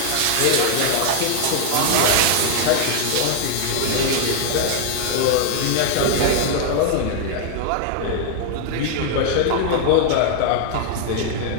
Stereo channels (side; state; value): both; different; correlation 0.00